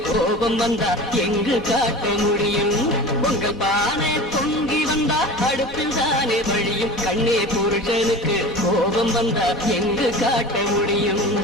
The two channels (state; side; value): normal; both; correlation 0.35